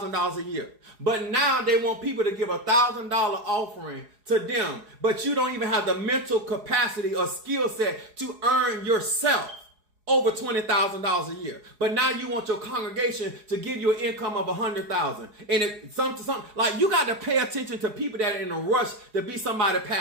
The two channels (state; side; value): late; left; 4.8 ms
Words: a year. But now they want people to give $1,000 offering to them. But you don't even have the mental capacity or skill set to earn yourself over $20,000 a year. But now you want your congregation to give you an income of $100,000. And it's something like, you got to pay attention to people that are in a rush to be somebody